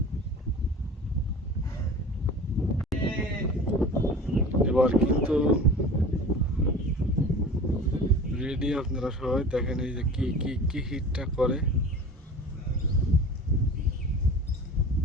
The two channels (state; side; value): normal; both; correlation 0.38